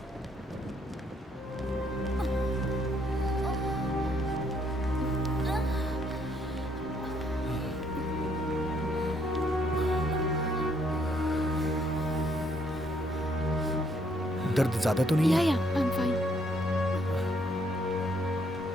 दर्द ज्यादा तो नहीं है? या आई एम फाइन।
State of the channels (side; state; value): both; normal; correlation 0.70